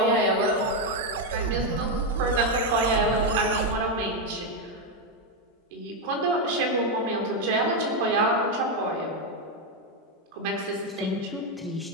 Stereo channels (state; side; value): normal; both; correlation 0.04